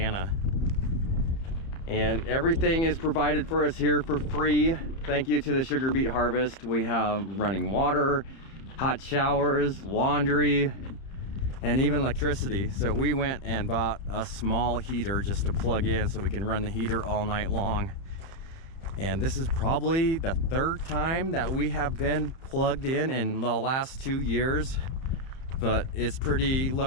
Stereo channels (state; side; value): late; right; 30 ms